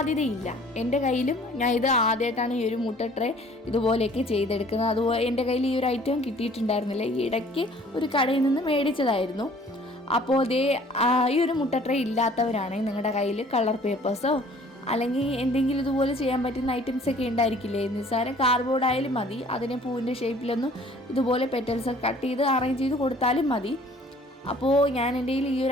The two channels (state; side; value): normal; both; correlation 0.54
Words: എൻ്റെ കയ്യിലും ഞാൻ ഇത് ആദ്യമായിട്ടാണ് ഈ ഒരു മുട്ട ട്രേ ഇതുപോലെയൊക്കെ ചെയ്തെടുക്കുന്നത്. അതുപോലെ എൻ്റെ കയ്യിൽ ഈ ഒരു ഐറ്റം കിട്ടിയിട്ടുണ്ടായിരുന്നില്ല. ഈ ഇടയ്ക്ക് ഒരു കടയിൽ നിന്ന് മേടിച്ചതായിരുന്നു. അപ്പോൾ ഈ ഒരു മുട്ട ട്രേ ഇല്ലാത്തവരാണെങ്കിൽ നിങ്ങളുടെ കയ്യിൽ കളർ പേപ്പേഴ്സോ അല്ലെങ്കിൽ എന്തെങ്കിലും ഇതുപോലെ ചെയ്യാൻ പറ്റുന്ന ഐറ്റംസ് ഒക്കെ ഉണ്ടായിരിക്കില്ലേ. നിസ്സാരം കാർഡ്ബോർഡ് ആയാലും മതി. അതിനെ പൂവിൻ്റെ ഷേപ്പിലൊന്നും ഇതുപോലെ പെറ്റൽസ് കട്ട് ചെയ്ത് അറേഞ്ച് ചെയ്ത് കൊടുത്താലും മതി. അപ്പോൾ ഞാൻ എൻ്റെ കയ്യിൽ ഈ